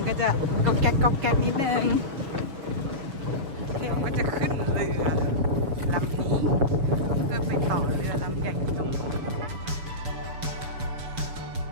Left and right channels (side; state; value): left; late; 7.0 ms